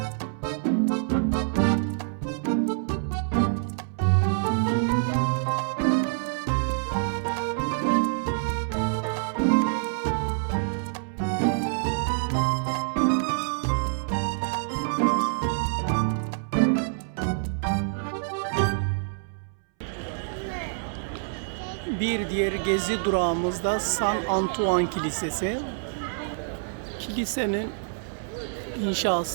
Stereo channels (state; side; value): silent; left; 60 dB below the other